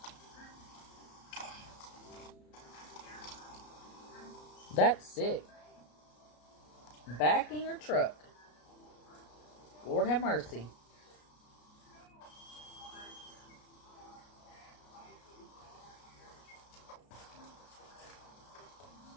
That's sick. Back in your truck. Lord have mercy.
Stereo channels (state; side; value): late; right; 33 ms